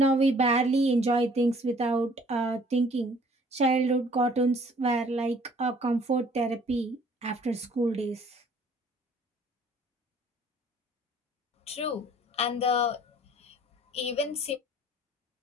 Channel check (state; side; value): normal; both; correlation 0.56